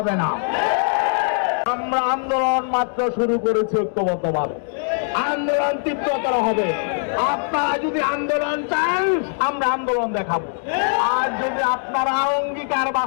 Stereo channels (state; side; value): silent; right; digital silence